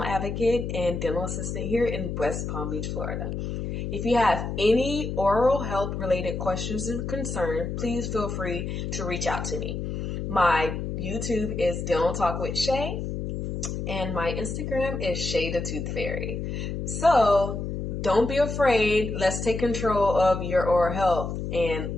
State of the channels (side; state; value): left; noise; hum, 4 dB below the sound